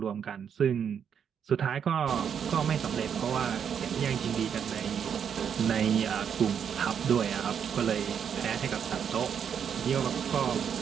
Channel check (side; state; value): left; quieter; 7.8 dB